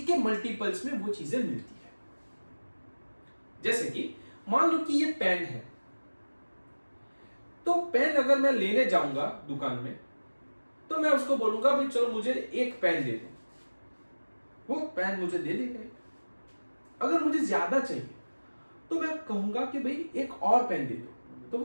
के मल्टीपल्स में वो चीजें मिलती है। जैसे कि मान लो कि ये पेन है, तो पेन अगर मैं लेने जाऊंगा दुकान में तो मैं उसको बोलूंगा भाई चलो मुझे एक पेन दे दो, वो पेन मुझे दे देगा। अगर मुझे ज्यादा चाहिए तो मैं कहूंगा कि भाई एक और पेन दे दो, तो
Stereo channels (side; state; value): both; inverted; correlation -1.00